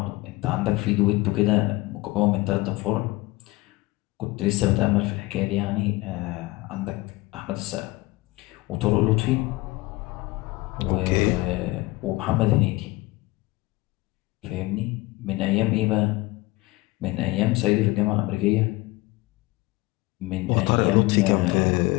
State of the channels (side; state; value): right; quieter; 21.1 dB